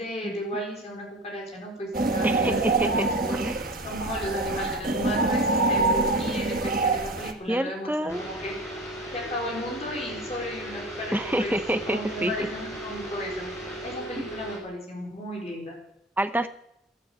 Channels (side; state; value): both; normal; correlation 0.34